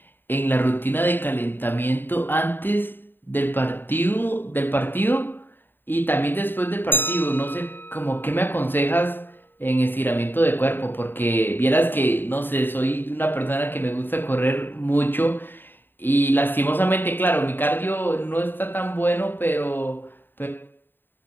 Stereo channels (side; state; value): right; late; 0.095 ms